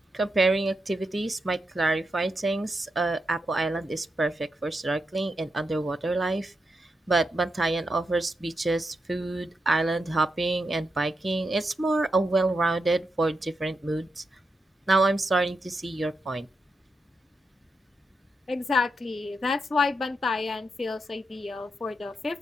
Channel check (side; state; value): both; normal; correlation 0.85